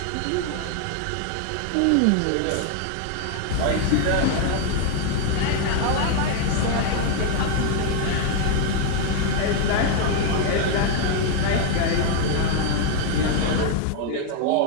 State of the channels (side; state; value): both; different; correlation 0.00